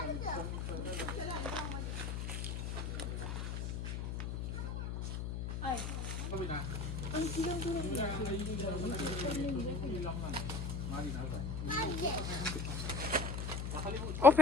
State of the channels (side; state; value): left; noise; hum, 3 dB below the sound